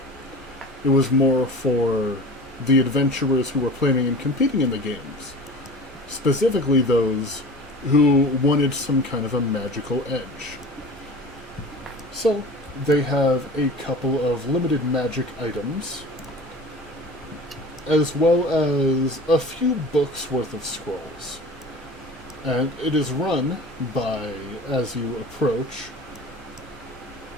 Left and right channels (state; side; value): normal; both; correlation 0.39